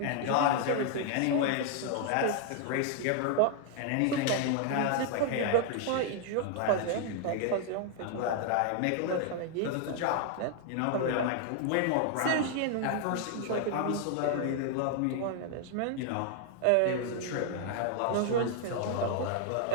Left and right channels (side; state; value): both; different; correlation 0.00